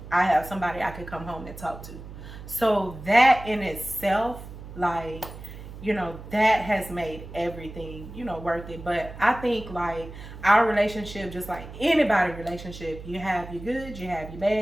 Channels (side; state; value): right; noise; hum, 13 dB below the sound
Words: I have somebody I could come home and talk to. So that in itself, like, you know, that has made everything, you know, worth it. But I think like our relationship, just like anybody relationship, you have your good, you have your